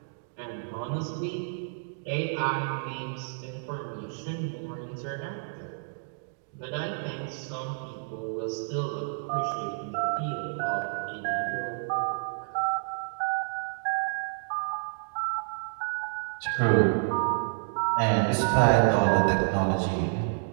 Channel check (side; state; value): left; silent; digital silence